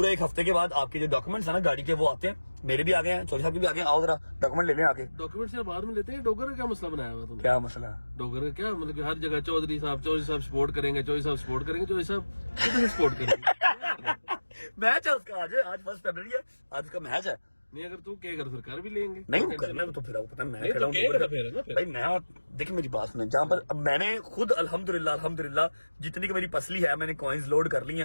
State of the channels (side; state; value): both; inverted; correlation -1.00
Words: एक हफ्ते के बाद आपके जो डॉक्यूमेंट्स है ना गाड़ी के, वो आते हैं। मेरे भी आ गए हैं, चौधरी साहब के भी आ गए हैं। आओ जरा डॉक्यूमेंट ले लें आके। डॉक्यूमेंट से बाद में लेते हैं। डोगर का क्या मसला बनाया हुआ तुमने? क्या मसला? डोगर का क्या मतलब कि हर जगह चौधरी साहब सपोर्ट करेंगे, चौधरी साहब सपोर्ट करेंगे, चौधरी साहब कितने सपोर्ट करेंगे? मैच है उसका आज 1 फरवरी है, आज उसका मैच है। नहीं अगर तू कहेगा तो फिर कर भी लेंगे। नहीं वो करना है, तो फिर आपको पता है मैं नहीं, खड़ा तो हूँ कहेगा डोगर फिर है ना का। फिर। भाई मैं, देखिए मेरी बात सुने, जहाँ पर अब मैंने खुद अल्हम्दुलिल्लाह जितनी की मेरी पसली है मैंने कॉइन्स लोड कर ली है।